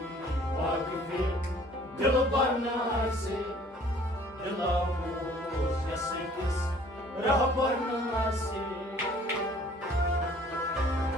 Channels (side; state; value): both; normal; correlation 0.54